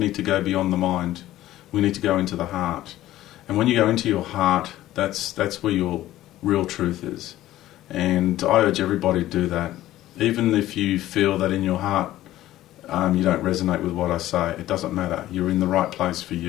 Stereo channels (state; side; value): quieter; right; 14.6 dB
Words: to go beyond the mind. We need to go into the heart. And when you go into your heart, that's where your real truth is. And I urge everybody to do that. Even if you feel that in your heart you don't resonate with what I say, it doesn't matter. You're in the right place for